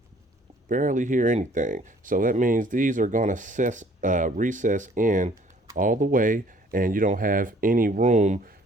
barely hear anything. So that means these are going to recess in all the way, and you don't have any room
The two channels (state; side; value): normal; both; correlation 0.57